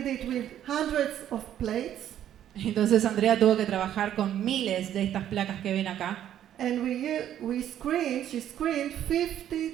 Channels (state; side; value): quieter; left; 11.0 dB